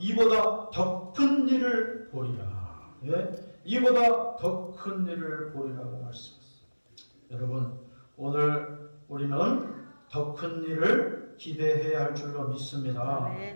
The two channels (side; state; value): both; inverted; correlation -1.00